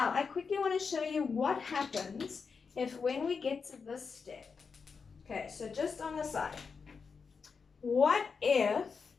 I quickly want to show you what happens if when we get to this step. Okay, so just on the side. What if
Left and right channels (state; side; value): quieter; right; 5.4 dB